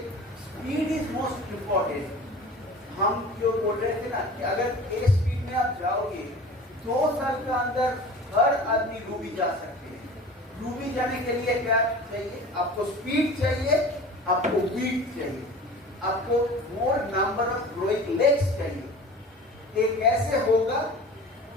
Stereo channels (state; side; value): normal; both; correlation 0.39